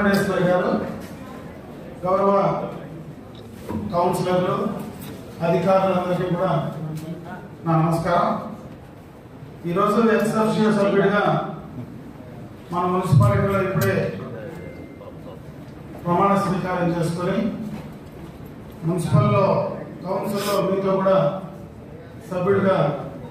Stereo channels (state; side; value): identical; both; correlation 1.00